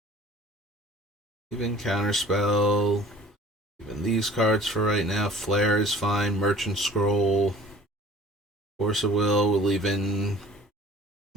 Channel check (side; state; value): both; normal; correlation 0.50